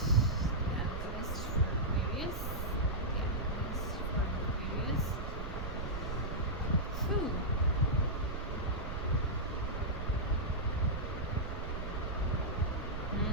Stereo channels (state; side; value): noise; right; rumble, 5 dB below the sound